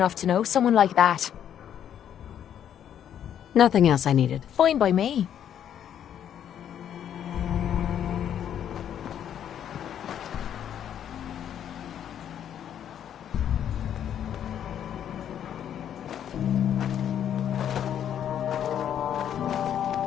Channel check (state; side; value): quieter; right; 9.7 dB